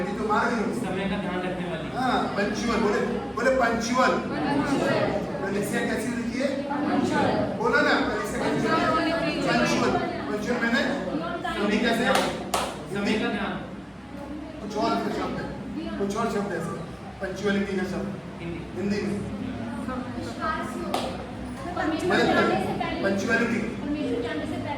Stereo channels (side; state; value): both; identical; correlation 1.00